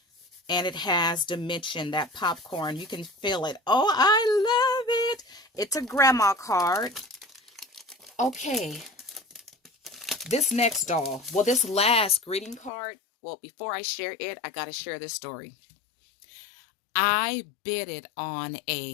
And it has dimension, that popcorn. You can feel it. Oh, I love it. It's a grandma card. Okay. This next doll. Well, this last greeting card. Well, before I share it, I got to share this story. I bid it on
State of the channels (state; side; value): drops out; right; at 12.7 s